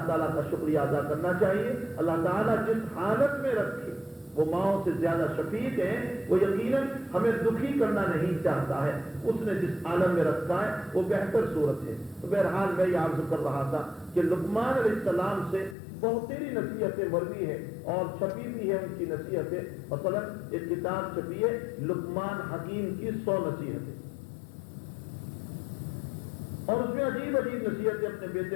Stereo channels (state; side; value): drops out; right; at 15.8 s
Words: تعالیٰ کا شکریہ ادا کرنا چاہیے۔ اللہ تعالیٰ جس حالت میں رکھے وہ ماؤں سے زیادہ شفیق ہیں، وہ یقیناً ہمیں دکھی کرنا نہیں چاہتا ہے، اس نے جس عالم میں رکھا ہے وہ بہتر صورت ہے۔ تو بہرحال میں یہ عرض کر رہا تھا کہ لقمان علیہ السلام سے بہت تیری نصیحتیں مروی ہیں اور چھپی بھی ہے ان کی نصیحتیں، مثلا ایک کتاب چھپی ہے لقمان حکیم کی 100 نصیحتیں، اور اس میں عجیب عجیب نصیحتیں اپنے